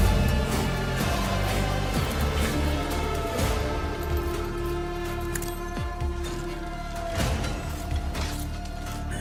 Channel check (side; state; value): both; identical; correlation 1.00